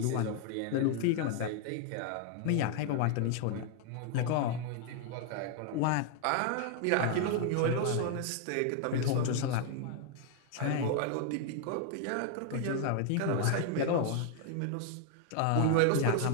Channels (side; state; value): both; different; correlation 0.00